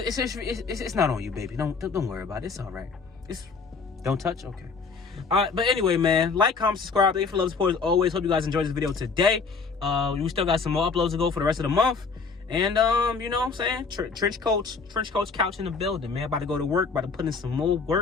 not on you, baby. Don't worry about it. It's all right. Don't touch. Okay. All right. But anyway, man, like, comment, subscribe. Thank you for love, support as always. Hope you guys enjoyed this video today. We still got some more uploads to go for the rest of the month. And you know what I'm saying? Trench coach couch in the building, man. About to go to work. About to put in some more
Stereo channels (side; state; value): right; quieter; 4.8 dB